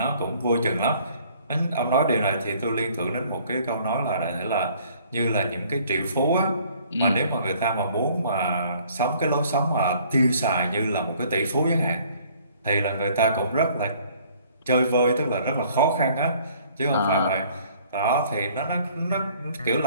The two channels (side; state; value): both; inverted; correlation -0.58